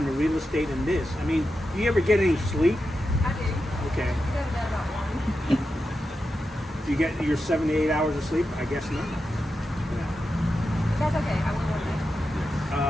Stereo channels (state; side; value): normal; both; correlation 0.89